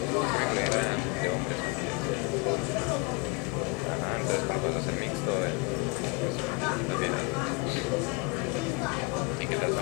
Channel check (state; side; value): quieter; right; 26.8 dB